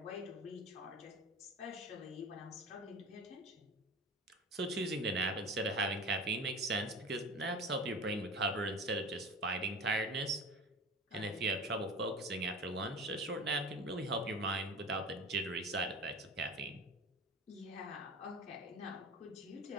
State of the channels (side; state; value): both; normal; correlation 0.34